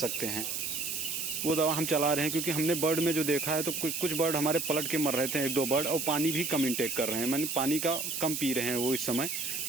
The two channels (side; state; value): right; noise; hiss, 3 dB below the sound